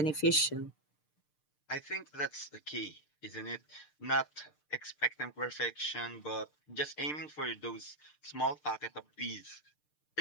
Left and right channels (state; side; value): late; right; 6.7 ms